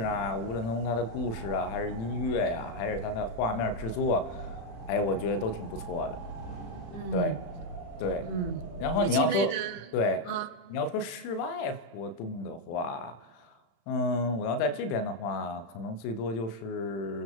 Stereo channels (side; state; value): right; late; 35 ms